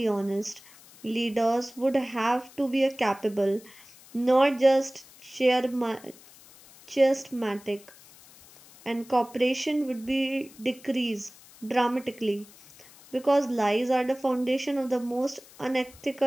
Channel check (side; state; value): left; noise; hiss, 23 dB below the sound